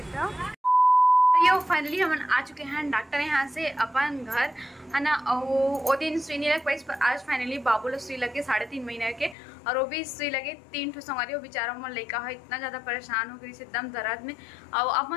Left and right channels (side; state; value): right; drops out; at 9.3 s